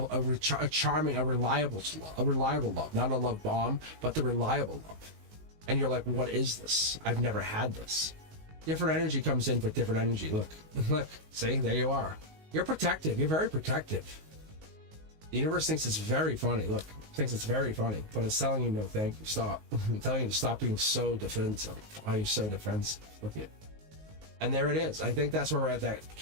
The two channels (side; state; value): left; late; 19 ms